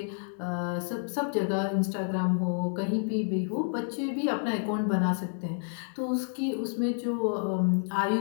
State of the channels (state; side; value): silent; right; 58 dB below the other